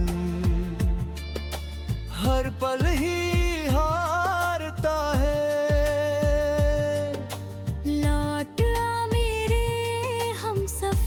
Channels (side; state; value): both; identical; correlation 1.00